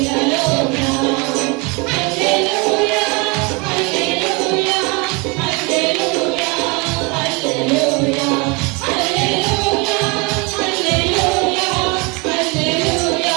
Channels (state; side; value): quieter; left; 29.1 dB